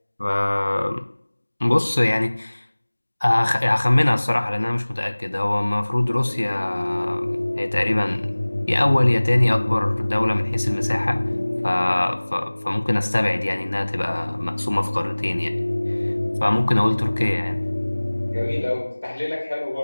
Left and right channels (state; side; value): inverted; both; correlation -1.00